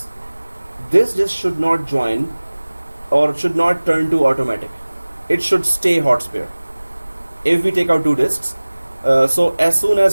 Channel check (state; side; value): inverted; both; correlation -1.00